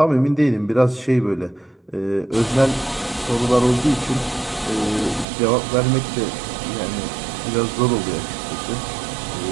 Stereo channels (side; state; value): left; drops out; at 5.2 s